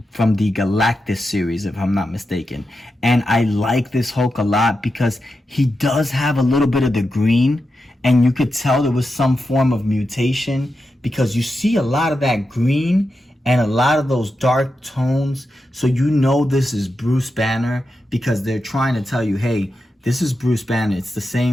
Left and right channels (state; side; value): normal; both; correlation 0.89